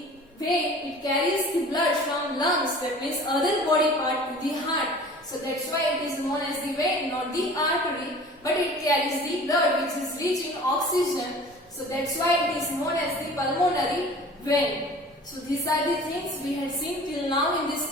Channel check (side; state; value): both; normal; correlation 0.44